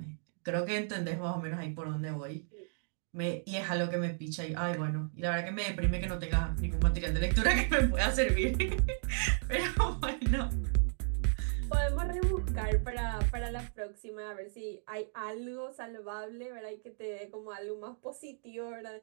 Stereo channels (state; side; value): silent; left; digital silence